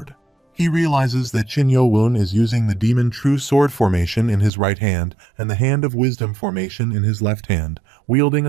He realizes that Qin Yo-woon is using the Demon True Sword formation in his right hand and the Hand of Wisdom formation in his left hand, wielding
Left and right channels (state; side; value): drops out; left; at 4.5 s